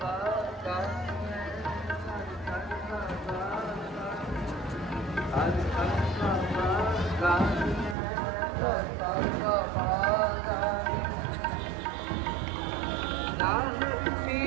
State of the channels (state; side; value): drops out; left; at 8.0 s